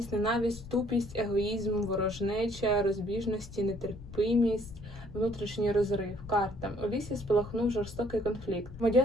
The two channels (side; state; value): left; noise; rumble, 14 dB below the sound